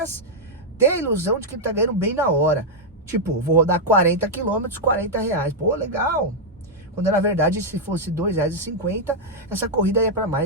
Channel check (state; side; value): normal; both; correlation -0.03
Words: ter a ilusão de que ele tá ganhando bem na hora. Tipo, vou rodar 40 quilômetros, 40 reais. Pô, legal. Quando na verdade, se fosse R$2,50, essa corrida ia para